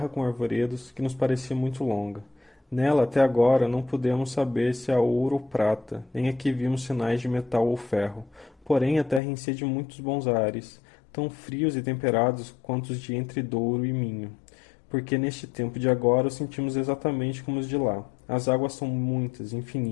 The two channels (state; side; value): drops out; right; at 9.2 s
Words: com arvoredos, que nos parecia muito longa. Nela, até agora, não pudemos saber se há ouro ou prata, nem aqui vimos sinais de metal ou ferro. Porém, a terra enchia de muitos bons ares, tão frios e temperados quanto os de entre Douro e Minho, porque neste tempo de agora os sentimos exatamente como os de lá. As águas são muitas,